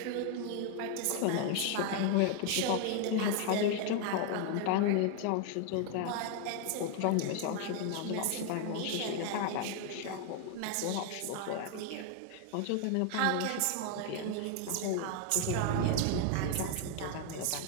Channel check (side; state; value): both; different; correlation 0.00